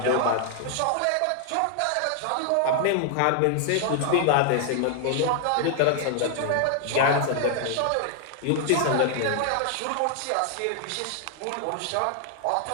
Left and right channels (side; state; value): both; different; correlation 0.00